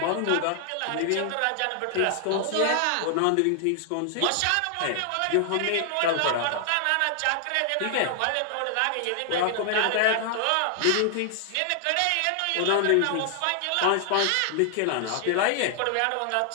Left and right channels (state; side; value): different; both; correlation 0.00